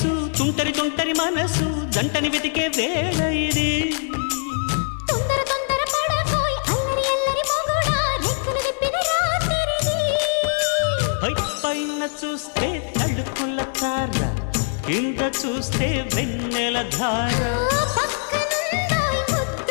తుంటరి తుంటరి మనసు జంటని వెతికే వేళ ఇది తొందర తొందర పడకోయ్ అల్లరి అల్లరి మొగుడా రెక్కలు విప్పిన రాత్రిది పైన చూస్తే తడుకుల తార కింద చూస్తే వెన్నెల ధార పక్కనుందోయ్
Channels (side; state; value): right; silent; digital silence